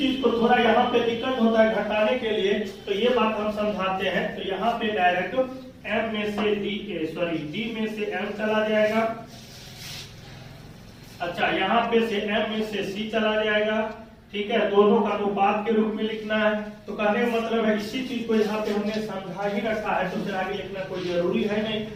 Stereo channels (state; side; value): identical; both; correlation 1.00